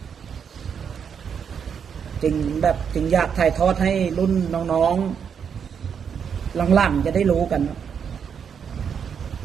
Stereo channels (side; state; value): left; quieter; 7.2 dB